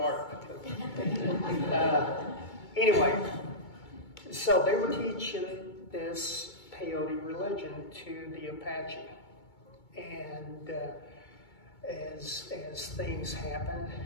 Anyway, so they were teaching this peyote religion to the Apache. And as things happened,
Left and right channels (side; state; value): right; late; 2.2 ms